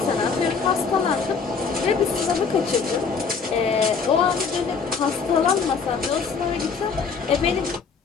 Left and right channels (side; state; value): right; quieter; 5.4 dB